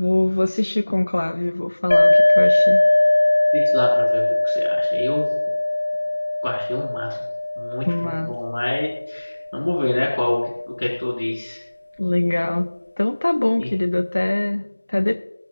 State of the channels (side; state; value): both; inverted; correlation -1.00